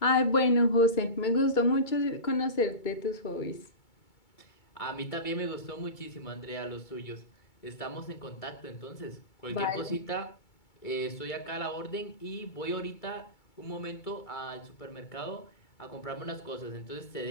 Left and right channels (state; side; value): late; right; 2.2 ms